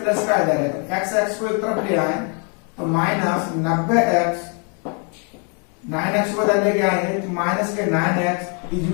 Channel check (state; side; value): quieter; right; 38.5 dB